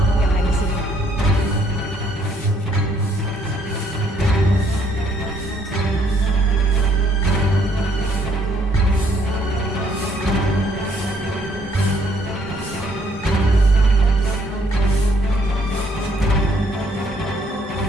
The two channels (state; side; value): normal; both; correlation 0.66